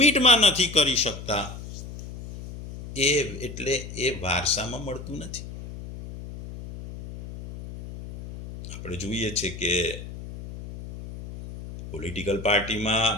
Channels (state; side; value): noise; left; hum, 11 dB below the sound